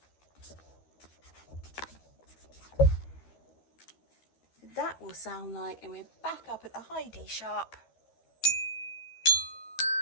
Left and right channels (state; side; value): late; right; 12 ms